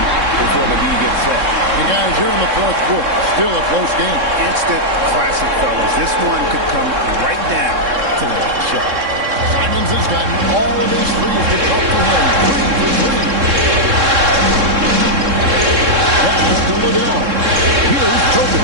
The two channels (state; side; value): late; left; 3.7 ms